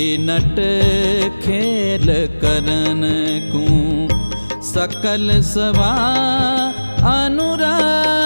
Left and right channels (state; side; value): inverted; both; correlation -1.00